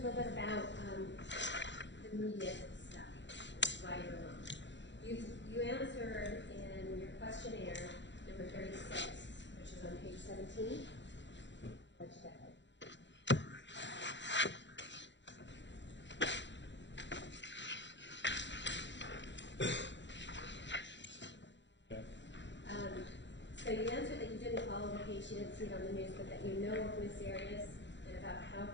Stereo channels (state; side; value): late; right; 0.52 ms